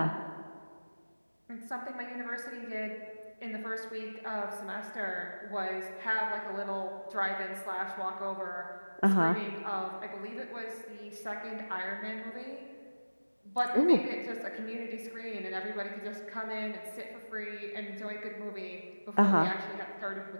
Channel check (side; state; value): both; inverted; correlation -1.00